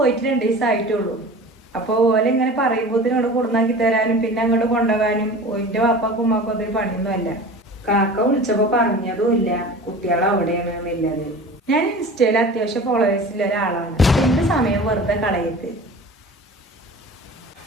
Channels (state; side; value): normal; both; correlation 0.38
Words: 2 ദിവസമായിട്ടുള്ളൂ. അപ്പൊ ഓലെ ഇങ്ങനെ പറയുമ്പോ ഇവിടെ കൊടുന്നാക്കി തരാനും പിന്നെ അങ്ങോട്ട് കൊണ്ടുപോകാനും ഓന്റെ വാപ്പാക്കും ഉമ്മാക്കും അതൊരു പണിയൊന്നുമല്ല. കാക്ക വിളിച്ചപ്പോ പറഞ്ഞതും ഇല്ല കുട്ടികൾ അവിടെയാണ് എന്നുള്ളത്. ഞാൻ ഇൻസ്റ്റയിൽ അത്യാവശ്യം ഫോളോവേഴ്സിലുള്ള ഒരാളാണ്. എന്റെ സമയം വെറുതെ കളയത്ത്.